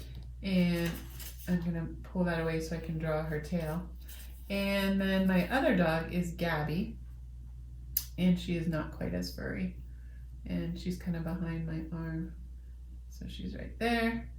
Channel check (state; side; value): identical; both; correlation 1.00